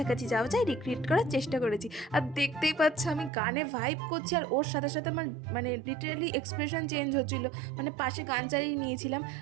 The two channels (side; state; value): left; drops out; at 3.3 s